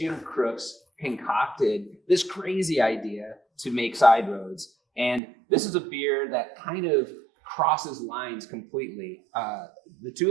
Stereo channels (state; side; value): drops out; left; at 5.2 s